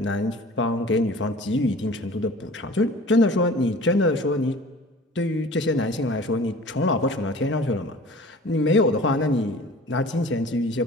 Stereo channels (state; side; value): normal; both; correlation 0.44